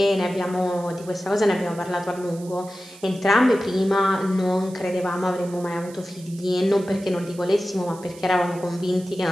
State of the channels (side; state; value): right; noise; hiss, 21 dB below the sound